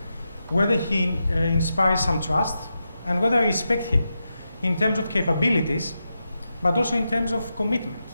whether he inspires some trust, and whether I respect him in terms of capabilities, but also in terms of commitment.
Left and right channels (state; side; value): inverted; both; correlation -0.88